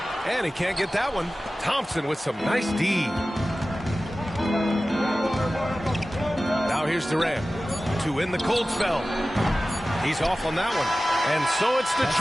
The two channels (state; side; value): normal; both; correlation 0.96